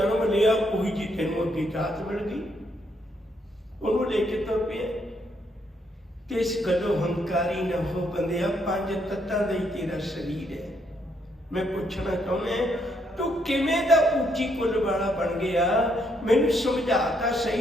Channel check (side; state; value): both; normal; correlation 0.73